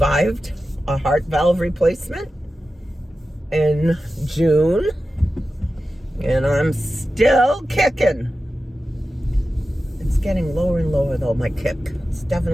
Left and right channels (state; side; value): normal; both; correlation 0.93